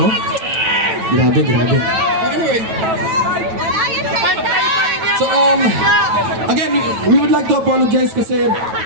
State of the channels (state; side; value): late; left; 9.1 ms